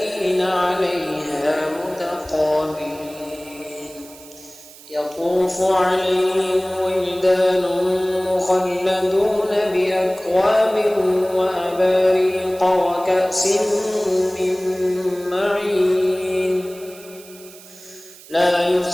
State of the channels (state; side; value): noise; right; hiss, 20 dB below the sound